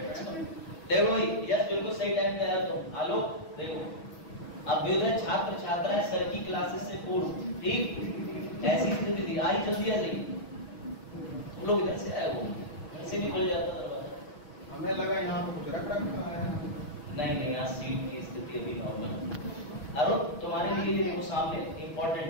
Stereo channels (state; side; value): late; right; 6.2 ms